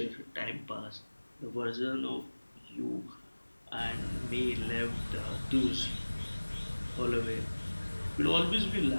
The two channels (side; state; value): both; inverted; correlation -1.00